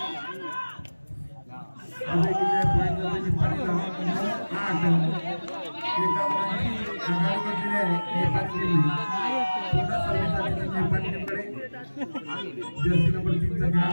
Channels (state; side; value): inverted; both; correlation -1.00